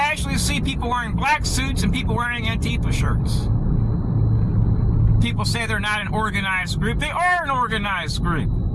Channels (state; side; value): identical; both; correlation 1.00